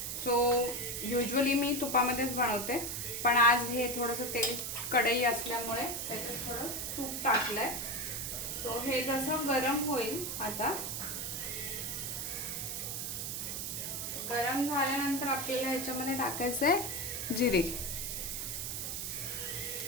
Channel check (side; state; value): right; noise; hiss, 3 dB below the sound